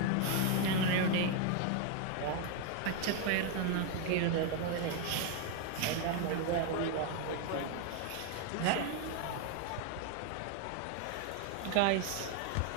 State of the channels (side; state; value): both; different; correlation 0.01